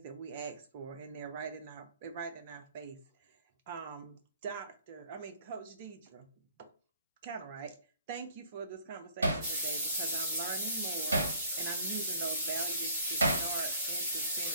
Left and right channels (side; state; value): both; inverted; correlation -0.54